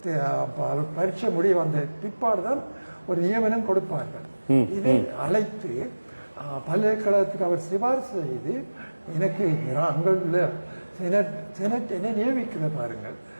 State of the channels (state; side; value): inverted; both; correlation -1.00